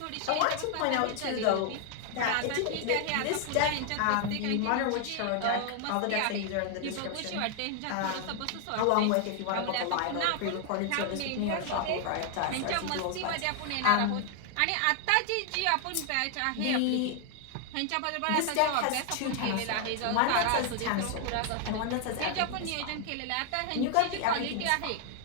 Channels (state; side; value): different; both; correlation 0.00